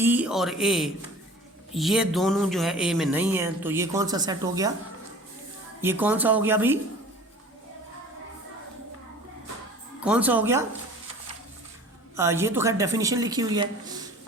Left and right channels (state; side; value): normal; both; correlation 0.44